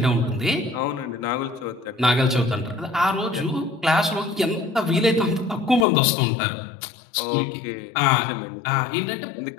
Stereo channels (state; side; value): drops out; right; at 5.9 s